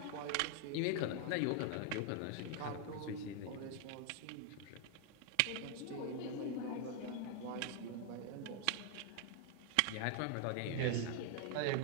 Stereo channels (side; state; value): both; different; correlation 0.00